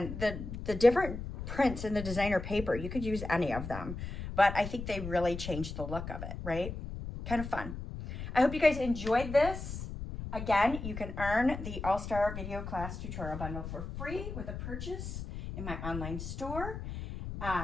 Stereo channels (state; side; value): noise; left; rumble, 7 dB below the sound